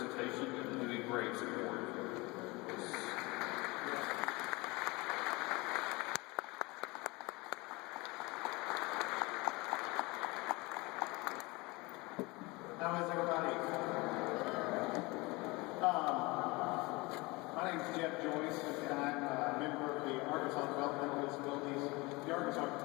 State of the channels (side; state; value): right; quieter; 24.2 dB